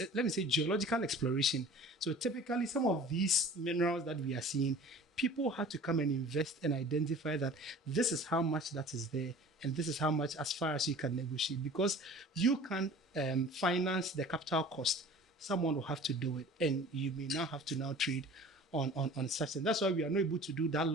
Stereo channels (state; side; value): normal; both; correlation 0.44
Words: me say, geological exploration. So typically some of these minerals that we are seeing, people have to come and invest and identify that this is how much that is there and this is how much as far as you can negotiate. Because you can't finance the capital cost. Someone will have to do it, and you may now have to now trade on such. And that's why we are not able to do that